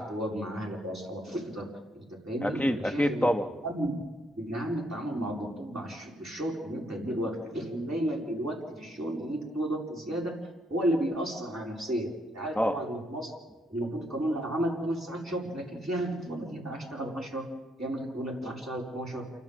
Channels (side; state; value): both; normal; correlation 0.74